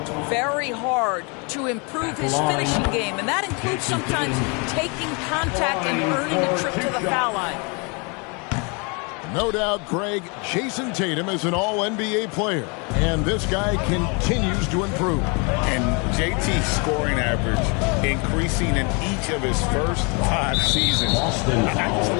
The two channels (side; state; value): right; quieter; 32.2 dB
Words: very hard to improve his finishing game, and that includes sometimes taking contact and earning a trip to the foul line. No doubt, Greg, Jason Tatum is an all-NBA player, and this guy continues to improve. And JT's scoring average increasing in each of his first 5 seasons. I just